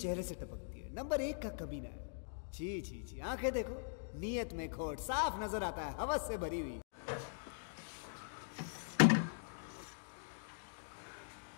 चेहरे से टपकती है, नंबर 1 का कमीना है। छी छी छी, आंखें देखो नीयत में खोट, साफ नजर आता है हवस से भरी हुई।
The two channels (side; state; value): right; silent; digital silence